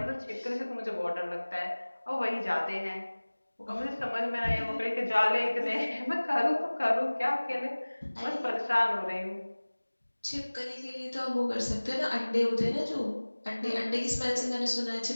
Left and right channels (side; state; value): both; inverted; correlation -1.00